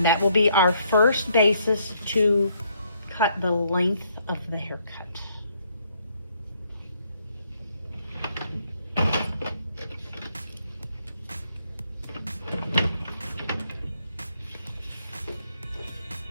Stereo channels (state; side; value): inverted; both; correlation -0.70